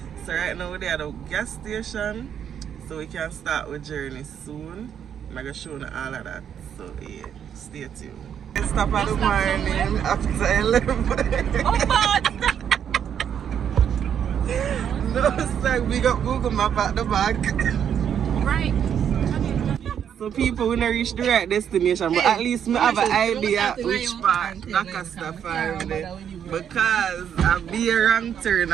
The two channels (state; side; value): quieter; left; 8.7 dB